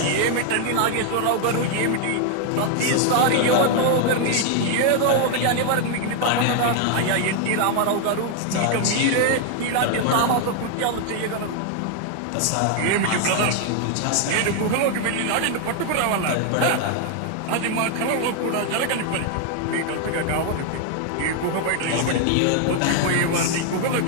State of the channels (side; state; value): both; different; correlation 0.00